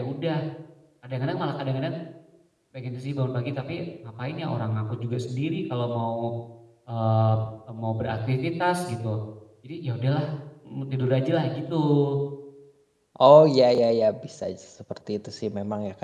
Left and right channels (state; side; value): identical; both; correlation 1.00